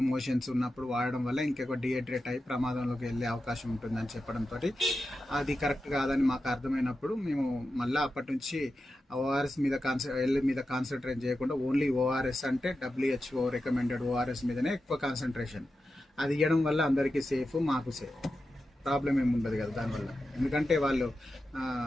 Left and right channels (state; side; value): normal; both; correlation 0.91